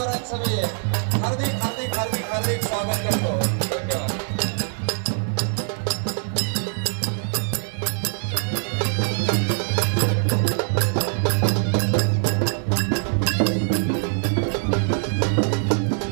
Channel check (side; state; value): left; silent; 63 dB below the other